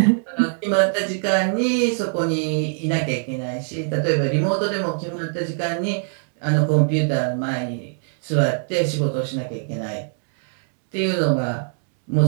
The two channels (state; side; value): silent; left; 61 dB below the other